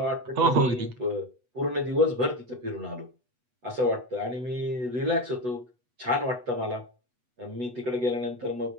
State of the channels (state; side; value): late; left; 8.1 ms